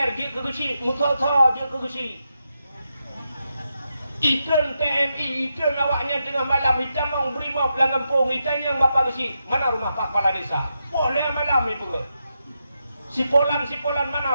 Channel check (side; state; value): both; inverted; correlation -0.86